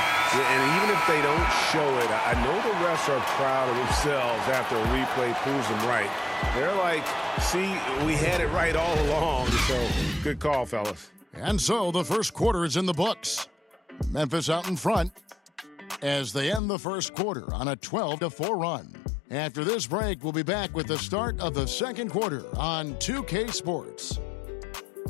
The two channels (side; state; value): right; drops out; at 16.6 s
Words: Yeah, and even if they don't show it, I know the refs are proud of themselves after a replay proves them right. They're like, see, we had it right all along. So, good call, fellas. And so the first quarter is in the books. Memphis out in front as they end the first quarter on a 12-4 run. After this break, we'll be back with the start of the second quarter on 2K Sports.